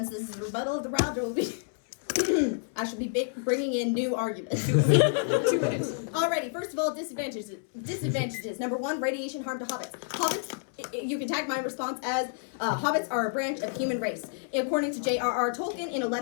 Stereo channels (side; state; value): right; silent; 58 dB below the other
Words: this is a rebuttal of the round, it will be. I should be bringing in new arguments. 2 minutes. Alrighty, first of all, disadvantages. Number 1, radiation harm to hobbits. Hobbits You can tag my response as hobbits are a branch of human race. According to J.R.R. Tolkien, in a